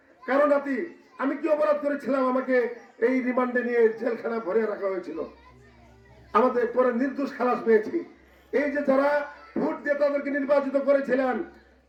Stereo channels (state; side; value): identical; both; correlation 1.00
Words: কারো নাতি, আমি কি অপরাধ করেছিলাম আমাকে এই রিমান্ডে নিয়ে জেলখানা ভরে রাখা হয়েছিল? আমাদের পরে নির্দোষ খালাস পেয়েছি। এই যে যারা ভোট দিয়ে তাদেরকে নির্বাচিত করেছিলেন,